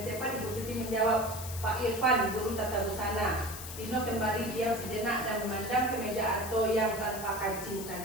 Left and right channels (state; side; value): noise; left; hiss, 10 dB below the sound